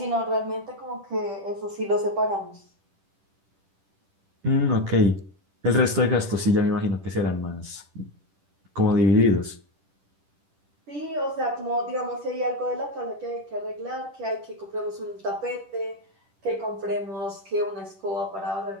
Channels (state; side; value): late; left; 10 ms